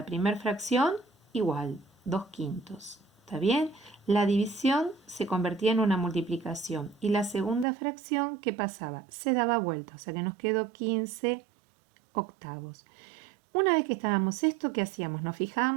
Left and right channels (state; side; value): drops out; left; at 7.7 s